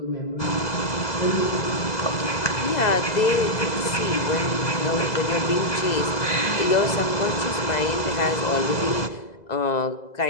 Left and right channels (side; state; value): right; late; 2.0 ms